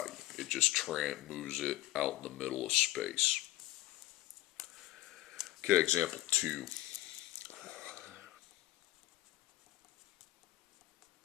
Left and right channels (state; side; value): quieter; right; 16.2 dB